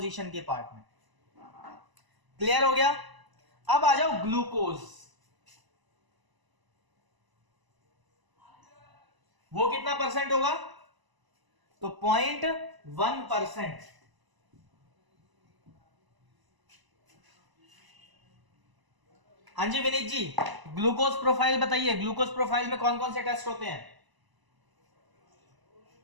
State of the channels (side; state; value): left; late; 1.0 ms